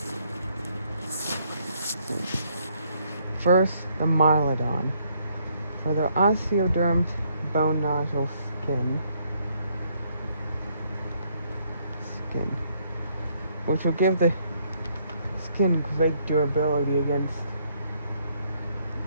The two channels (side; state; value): both; inverted; correlation -0.70